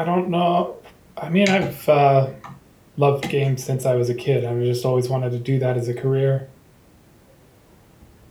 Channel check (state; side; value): identical; both; correlation 1.00